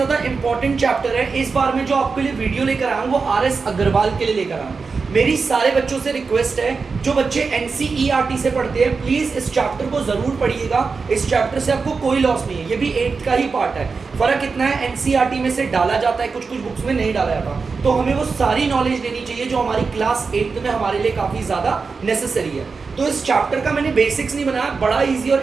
इंपॉर्टेंट चैप्टर है। इस बार मैं जो आपके लिए वीडियो लेकर आया हूँ वो आर.एस. अग्रवाल के लिए लेकर आया हूँ। मेरी सारे बच्चों से रिक्वेस्ट है, जो बच्चे एनसीईआरटी से पढ़ते हैं प्लीज इस चैप्टर को जरूर पढ़िएगा। इस चैप्टर से आपको कोई लॉस नहीं है, ये भी 8th का ही पार्ट है। फर्क इतना है, एनसीईआरटी में से डाला जाता है, कुछ कुछ बुक्स में नहीं डाला जाता, तो हमें वो सारी नॉलेज लेनी चाहिए जो हमारी क्लास 8th में हमारे लिए काफी ज्यादा नेसेसरी है। तो इस चैप्टर का मैंने बेसिक्स नहीं बनाया, बड़ा इजी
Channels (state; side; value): quieter; left; 4.8 dB